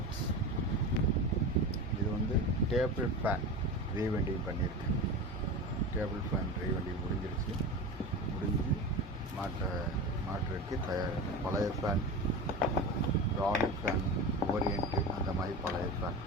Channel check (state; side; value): normal; both; correlation 0.27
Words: இது வந்து table fan rewinding பண்ணியிருக்கேன். டேபிள் ஃபேன் ரீவைண்டிங் முடிஞ்சிருச்சு. முடிஞ்சு மாற்றுறதுக்கு தயார். பழைய ஃபேன், ராலி ஃபேன், ஓரியன்ட்டு அந்த மாதிரி பழைய ஃபேன்.